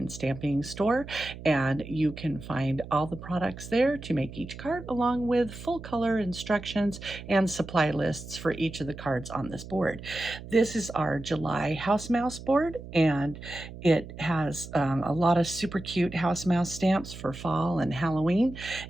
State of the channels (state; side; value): noise; right; hum, 13 dB below the sound